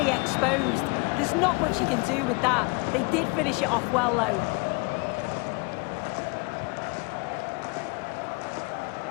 exposed. There's not much he can do with that. They did finish it off well, though.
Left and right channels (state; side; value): quieter; right; 29.3 dB